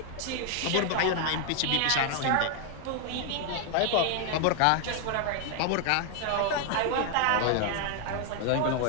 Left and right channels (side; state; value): both; different; correlation 0.00